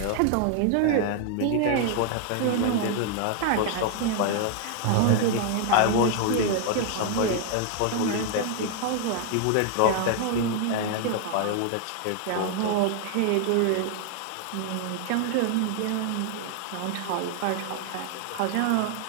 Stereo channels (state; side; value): different; both; correlation 0.00